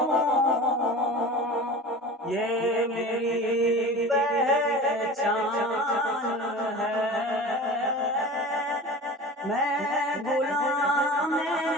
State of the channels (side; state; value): both; normal; correlation 0.35